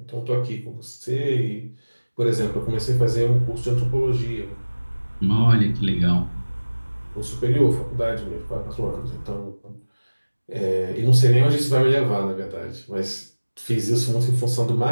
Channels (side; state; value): both; inverted; correlation -1.00